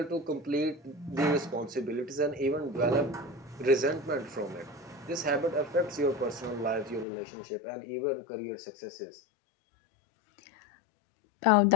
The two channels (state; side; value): drops out; right; at 7.1 s